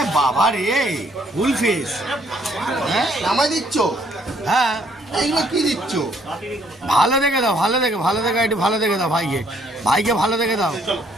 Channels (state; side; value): normal; both; correlation 0.66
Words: বাবা রে, ফুল ফ্রেশ। হ্যাঁ নামাই দিচ্ছ? হ্যাঁ এইগুলো কি দিচ্ছ? ভালো দেখে দাও, ভালো দেখে একটু ভালো দেখে দাও ভাইকে ভালো দেখে দাও।